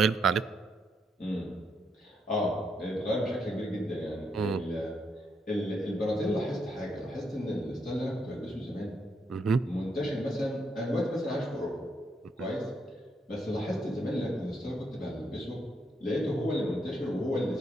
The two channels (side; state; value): both; normal; correlation 0.78